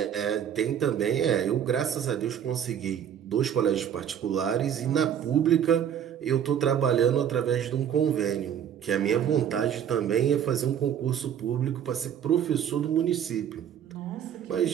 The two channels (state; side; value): quieter; left; 9.2 dB